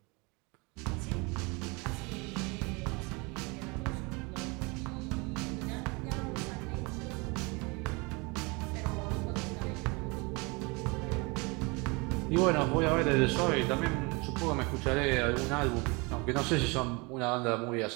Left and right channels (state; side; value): quieter; left; 27.9 dB